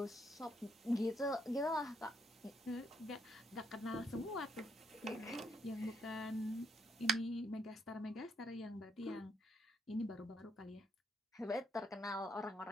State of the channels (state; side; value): normal; both; correlation 0.73